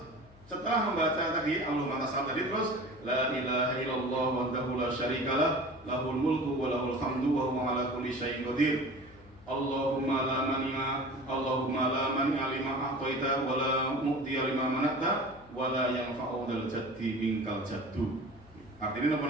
setelah membaca tadi Allahumma tasal tadi, terus la ilaha illallah wahdahu la syarikalah lahul mulku wa lahul hamdu wa huwa ala kulli syai'in qadir. Allahumma la mani'a lima a'taita wa la mu'tiya lima mana'ta wala yanfa'u dzal jaddi minkal jaddu. Artinya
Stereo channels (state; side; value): noise; left; hum, 24 dB below the sound